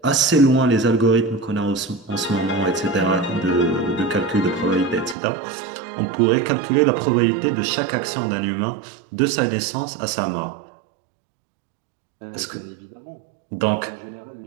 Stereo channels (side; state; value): left; drops out; at 5.2 s